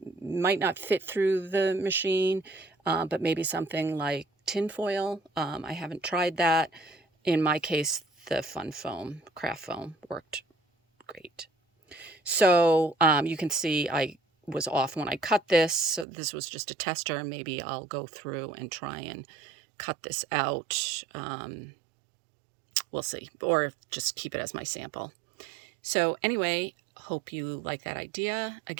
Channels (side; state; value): left; drops out; at 16.1 s